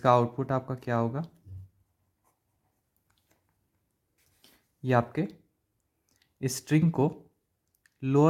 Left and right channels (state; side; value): identical; both; correlation 1.00